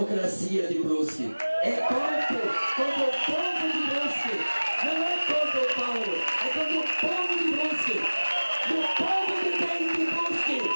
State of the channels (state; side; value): inverted; both; correlation -1.00